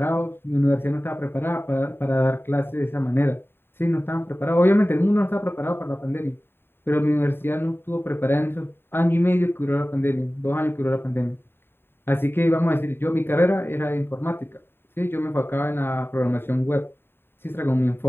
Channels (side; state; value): right; late; 0.11 ms